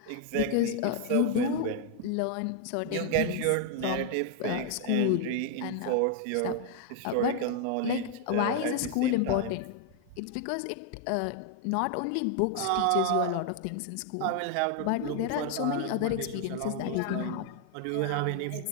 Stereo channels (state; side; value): different; both; correlation 0.00